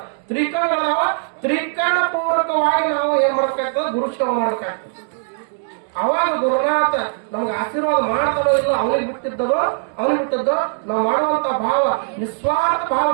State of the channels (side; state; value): left; silent; digital silence